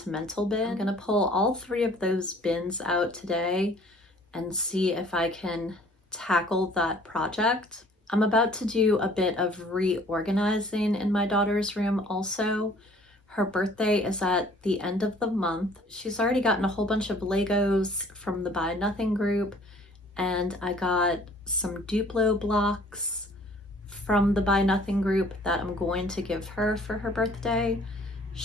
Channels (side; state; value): both; normal; correlation 0.55